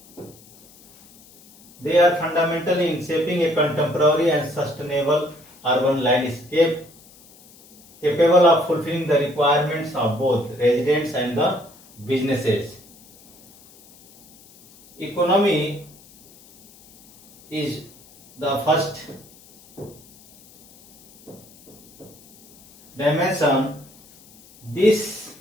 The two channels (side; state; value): left; noise; hiss, 25 dB below the sound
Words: and sustainable urban landscape capable of fulfilling the requirements of both residents and the businesses. Economy is the first dimension, this